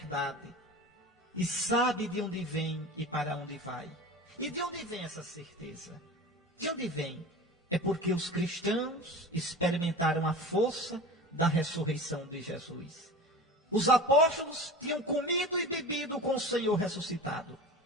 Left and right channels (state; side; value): normal; both; correlation 0.34